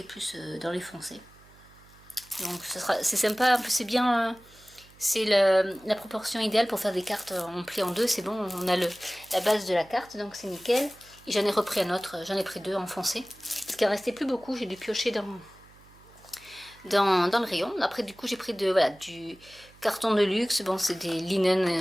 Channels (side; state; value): right; noise; hum, 26 dB below the sound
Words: est plus dans les foncés. Donc c'est sympa, c'est bien, c'est la proportion idéale pour faire des cartes en pli en deux. C'est bon, on a la base de la carte, donc c'est nickel. Et j'en ai repris un autre, j'en ai pris 2 en foncé parce qu'il en restait plus beaucoup. J'ai dû piocher dans le rayon. Après du coup j'ai pris voilà, du carton de luxe. Bon, c'est des